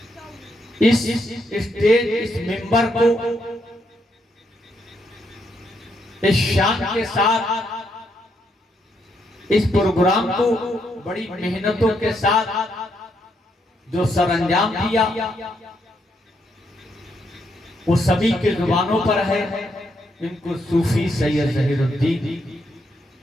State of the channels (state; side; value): normal; both; correlation 0.77